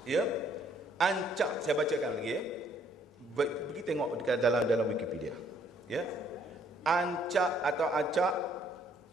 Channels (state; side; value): normal; both; correlation 0.65